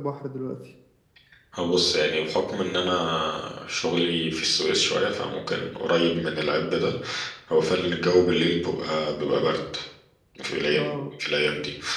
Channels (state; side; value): identical; both; correlation 1.00